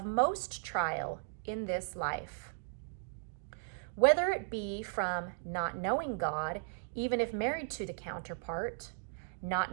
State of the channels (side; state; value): left; silent; digital silence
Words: most trial in this life. Whether it be from not knowing God, even if married to the counterpart, not